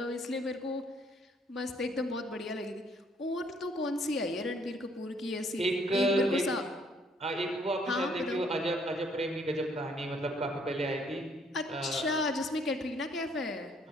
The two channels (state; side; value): normal; both; correlation 0.65